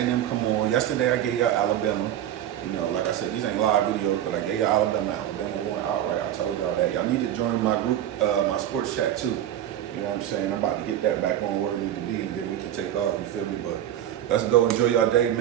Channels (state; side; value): quieter; left; 11.4 dB